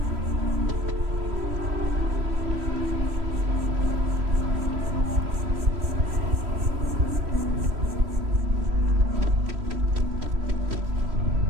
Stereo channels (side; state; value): left; late; 3.1 ms